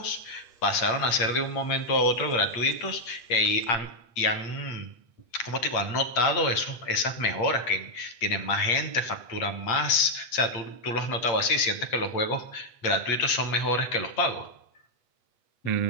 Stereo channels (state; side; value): late; right; 8.3 ms